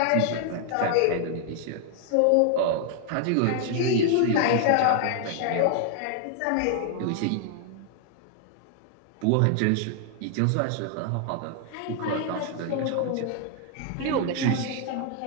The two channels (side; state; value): both; different; correlation 0.00